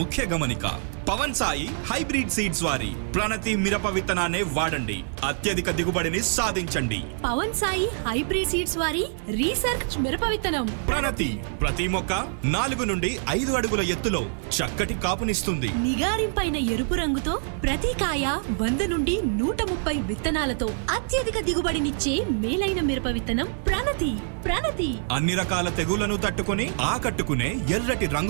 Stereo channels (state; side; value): silent; left; digital silence